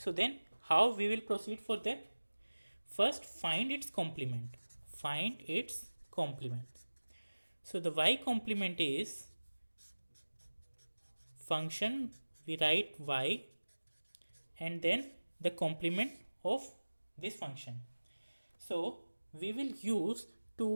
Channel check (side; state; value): both; inverted; correlation -1.00